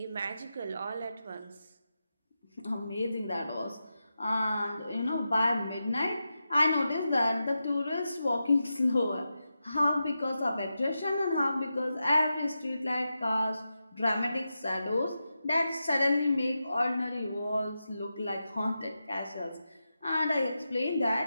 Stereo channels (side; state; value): both; inverted; correlation -0.90